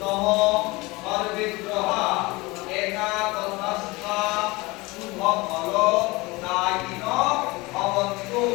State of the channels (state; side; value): quieter; right; 23.1 dB